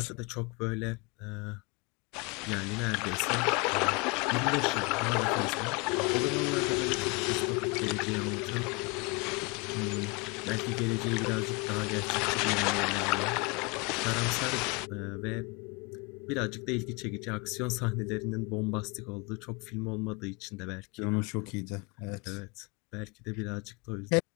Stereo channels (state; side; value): quieter; right; 28.9 dB